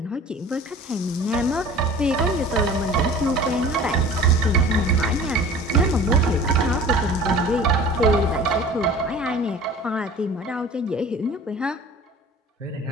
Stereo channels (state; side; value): normal; both; correlation 0.43